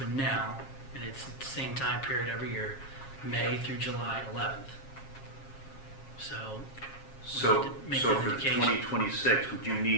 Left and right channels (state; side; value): late; right; 7.4 ms